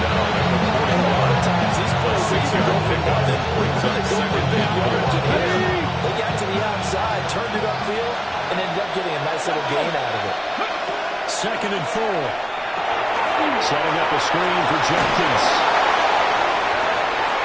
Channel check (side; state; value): both; identical; correlation 1.00